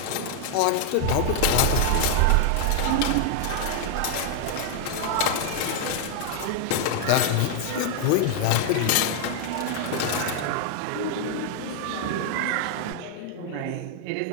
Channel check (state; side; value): different; both; correlation 0.00